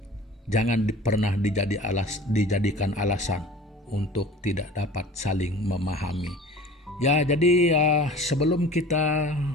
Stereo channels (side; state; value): both; normal; correlation 0.42